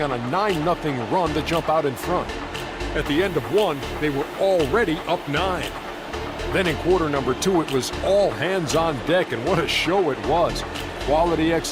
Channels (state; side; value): identical; both; correlation 1.00